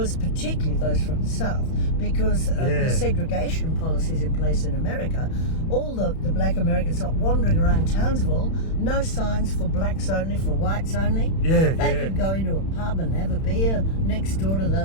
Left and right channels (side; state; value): right; late; 31 ms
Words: particularly those from the South, because of the segregation policies in place in America, all the black Americans are wandering around Townsville, no signs for blacks only, for whites only. Yeah, They yeah. could go into a pub and have a beer next door to